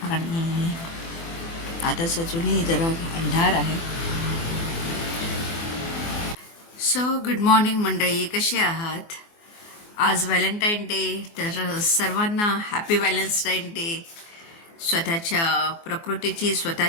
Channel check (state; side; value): late; right; 24 ms